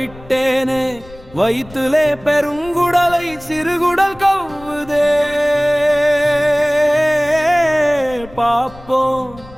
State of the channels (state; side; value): noise; left; rumble, 21 dB below the sound